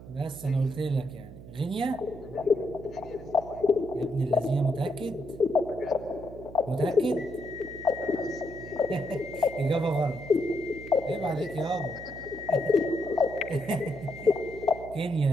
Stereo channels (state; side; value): noise; right; hum, 15 dB below the sound